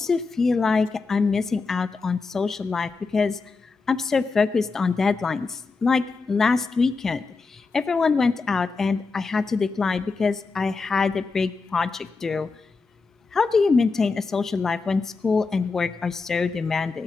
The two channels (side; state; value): right; quieter; 4.3 dB